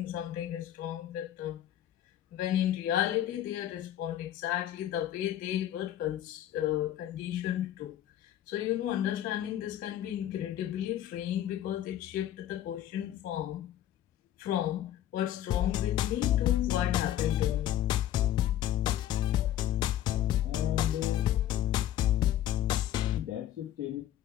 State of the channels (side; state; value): right; quieter; 12.2 dB